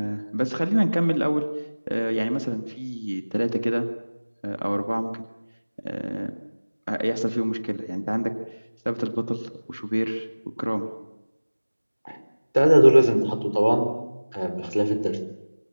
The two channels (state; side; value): inverted; both; correlation -1.00